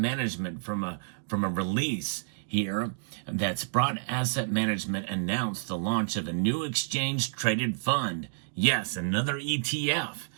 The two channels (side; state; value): left; silent; digital silence